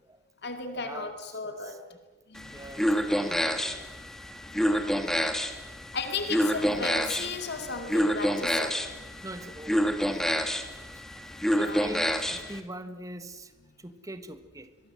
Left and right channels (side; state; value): both; normal; correlation 0.79